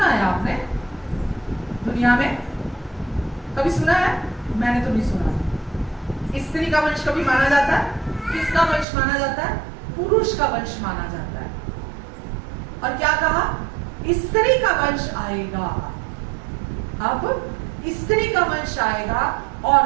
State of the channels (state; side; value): drops out; left; at 8.8 s